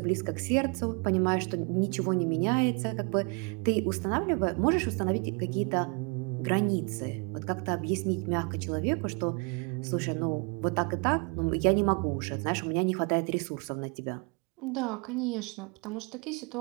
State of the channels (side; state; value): left; quieter; 34.0 dB